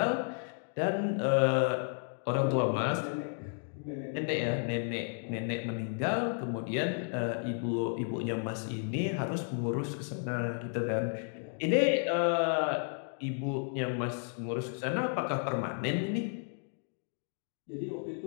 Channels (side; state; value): right; silent; 56 dB below the other